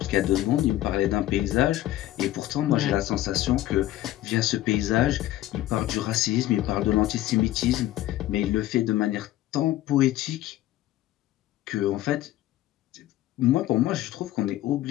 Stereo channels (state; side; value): quieter; right; 14.6 dB